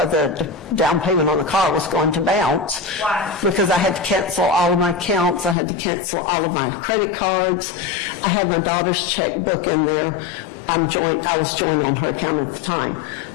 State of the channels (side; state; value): right; drops out; at 5.6 s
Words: the down payment on the car was going to bounce. Why? Because I had to cancel all of my accounts. I had to cancel all of my credit cards. I had my daughter's checkbook in there. I was joined on her account at the time.